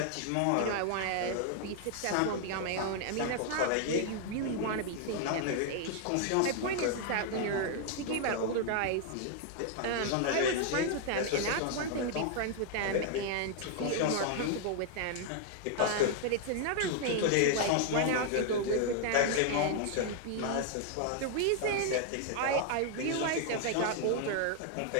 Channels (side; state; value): both; different; correlation 0.00